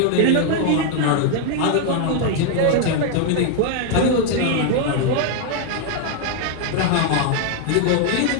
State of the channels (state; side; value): different; both; correlation 0.00